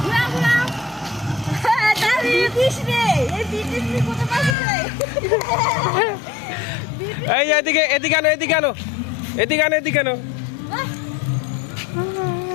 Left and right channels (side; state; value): right; drops out; at 4.5 s